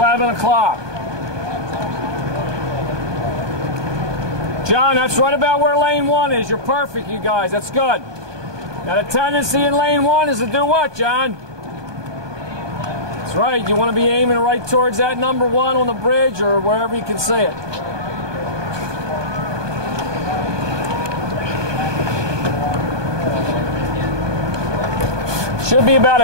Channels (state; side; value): late; left; 1.2 ms